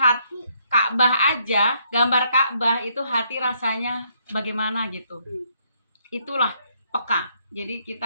Ka'bah aja, gambar Ka'bah itu hati rasanya bagaimana gitu. Itulah peka. Jadi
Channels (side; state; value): both; inverted; correlation -0.71